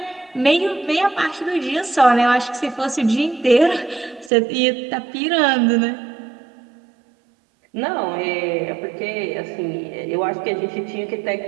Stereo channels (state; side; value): drops out; left; at 4.3 s